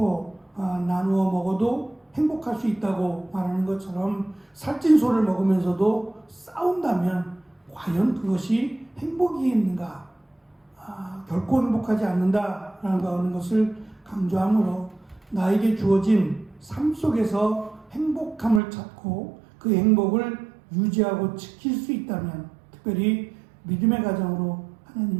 나누어 먹어도 행복할 수 있다고 말하는 것처럼 살찐 소를 먹으면서도 싸운다면 과연 그것이 행복이겠는가? 결코 행복하지 않는다라는 것을 강조하므로 나에게 주어진 삶 속에서 행복함을 찾고 그 행복을 유지하고 지킬 수 있다면, 특별히 믿음의 가정으로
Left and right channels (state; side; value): drops out; left; at 18.6 s